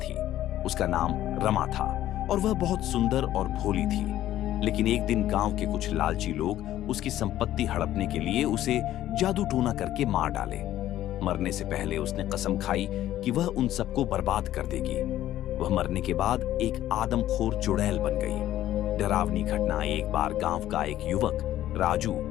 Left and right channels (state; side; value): quieter; right; 13.2 dB